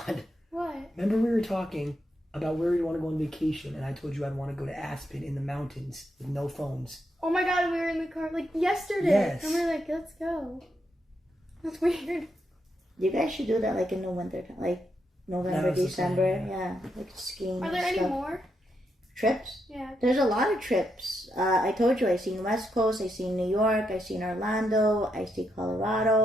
What? Remember we were talking about where you want to go on vacation, and I told you I'd want to go to Aspen in the mountains with no phones. Oh my god, we were in the car like yesterday. Yes. And we were like, let's go. That's weird. You guys should do that like in the winter time, like November, December. Yeah, like skiing. Are there and any stuff. more? Trips? Yeah. There's a lot of trips. I told you I seen West Coast, I seen New York, I seen Orlando, I see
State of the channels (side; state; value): both; normal; correlation 0.81